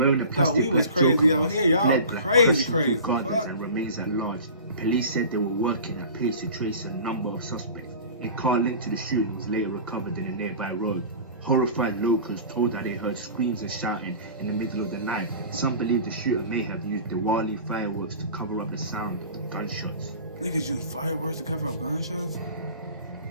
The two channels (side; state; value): both; inverted; correlation -0.39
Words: a plastic thought we was crazy out here. Y'all crazy. And remains at large. Police said they were working at pace to trace a number of suspects. A car linked to the shooting was later recovered in a nearby road. Horrified locals told that they heard screams and shouting in the middle of the night. Some believe the shooter may have used Diwali fireworks to cover up the sound of gunshots. Niggas use fireworks to cover up gunshots?